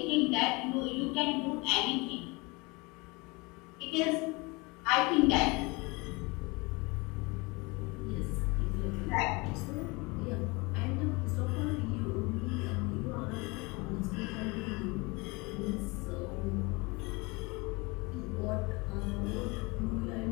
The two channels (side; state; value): right; quieter; 26.3 dB